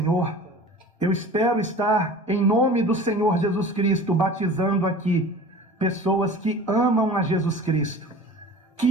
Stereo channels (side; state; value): both; normal; correlation 0.40